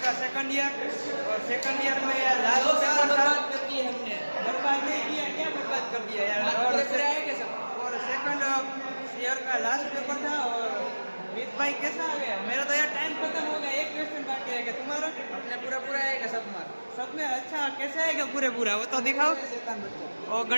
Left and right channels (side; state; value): both; inverted; correlation -1.00